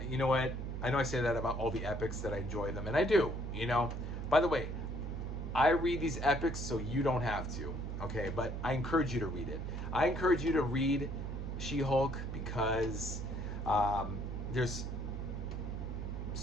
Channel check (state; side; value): noise; right; hum, 4 dB below the sound